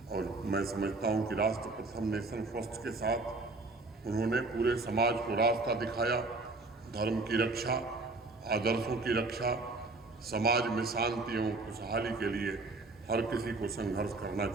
और मैं समझता हूं कि राष्ट्र प्रथम नेशन फर्स्ट के साथ उन्होंने पूरे समाज को रास्ता दिखाया। धर्म की रक्षा, आदर्शों की रक्षा, समाज में शांति एवं खुशहाली के लिए हर किसी को संघर्ष करना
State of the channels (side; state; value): left; quieter; 3.3 dB